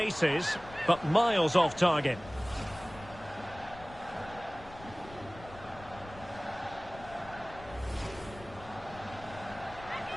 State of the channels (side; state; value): left; noise; rumble, 17 dB below the sound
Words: but miles off target.